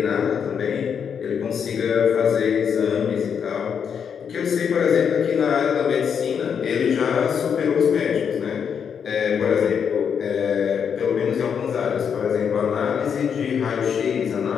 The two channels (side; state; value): right; quieter; 7.3 dB